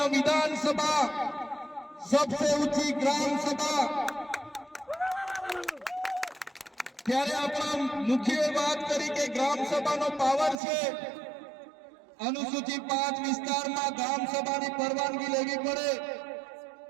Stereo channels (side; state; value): left; drops out; at 10.6 s